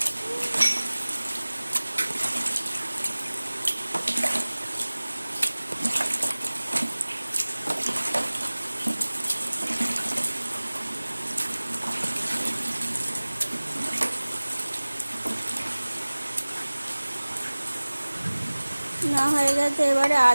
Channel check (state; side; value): inverted; both; correlation -1.00